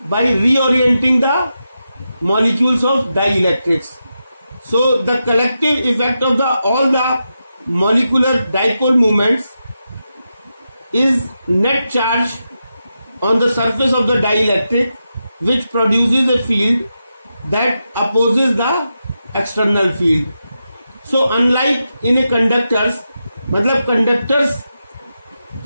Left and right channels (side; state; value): both; inverted; correlation -0.88